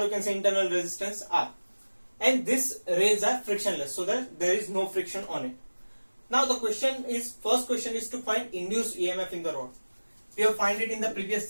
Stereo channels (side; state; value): both; inverted; correlation -1.00